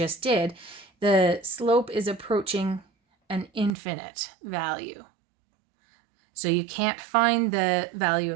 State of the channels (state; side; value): drops out; left; at 3.7 s